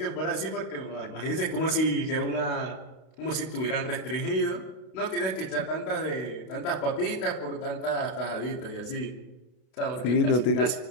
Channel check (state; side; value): late; right; 32 ms